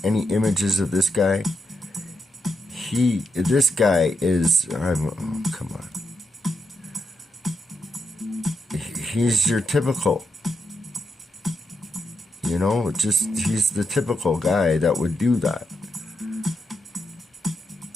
any images of this guy? This guy is, oh, come on. He's your typical, you know, he's the typical guy that would do that.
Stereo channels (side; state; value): both; normal; correlation 0.82